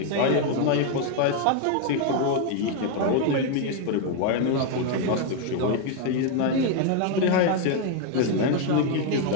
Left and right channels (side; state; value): both; different; correlation 0.01